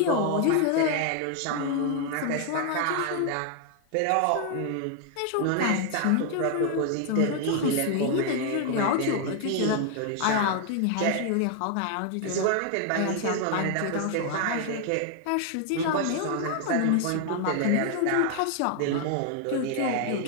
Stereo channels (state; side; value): different; both; correlation 0.00